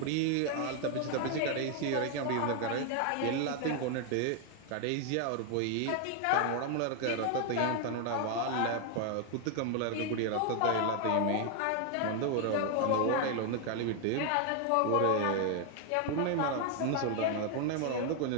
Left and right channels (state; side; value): different; both; correlation 0.00